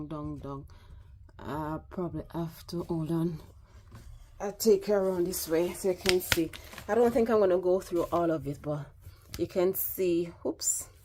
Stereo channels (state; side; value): identical; both; correlation 1.00